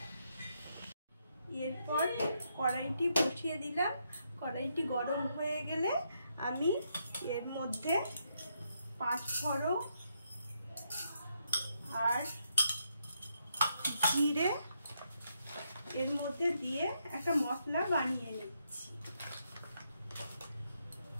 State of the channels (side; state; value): both; inverted; correlation -0.78